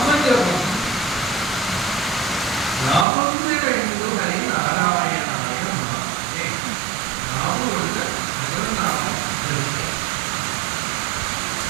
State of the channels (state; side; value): drops out; left; at 3.1 s